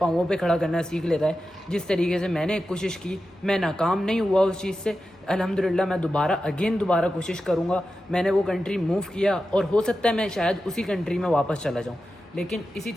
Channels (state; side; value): normal; both; correlation 0.91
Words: पे खड़ा करना सीख लेता है। जिस तरीके से मैंने कोशिश की, मैं नाकाम नहीं हुआ उस चीज़ से, अल्हम्दुलिल्लाह मैं दोबारा कोशिश करूँगा। मैंने वो कंट्री मूव किया, और हो सकता है मैं शायद उसी कंट्री में वापस चला जाऊँ, लेकिन इसी